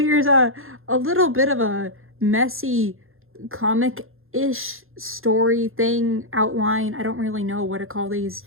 a little bit of a messy comic-ish story thing, outline. I don't really know what to call these.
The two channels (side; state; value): left; late; 0.60 ms